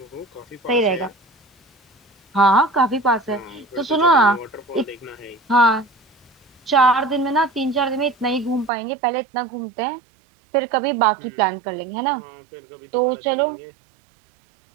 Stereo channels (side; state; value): left; drops out; at 8.7 s